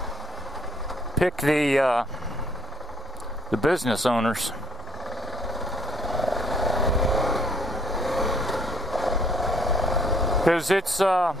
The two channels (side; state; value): both; normal; correlation 0.65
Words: pick the business owners. Because it's